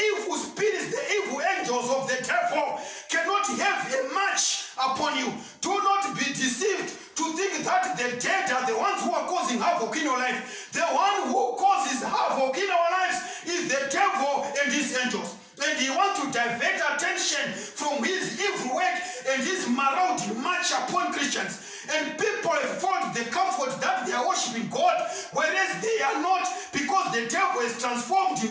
spirits, the evil angels of the devil cannot have a march upon you. Do not be deceived to think that the dead are the ones who are causing havoc in your life. The one who causes havoc in our lives is the devil and his angels. And he wants to divert attention from his evil work and his marauding march upon Christians. And people have found the comfort that they are worshiping God, whereas they are not, because the devil has transformed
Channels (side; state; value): both; identical; correlation 1.00